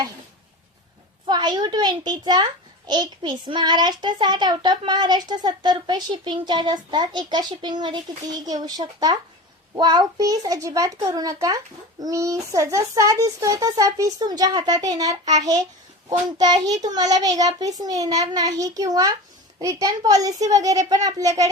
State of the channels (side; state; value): both; normal; correlation 0.31